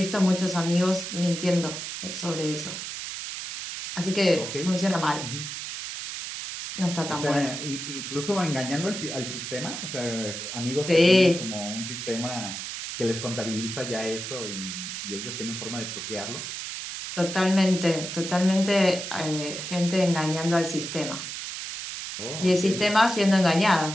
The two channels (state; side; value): noise; right; hiss, 7 dB below the sound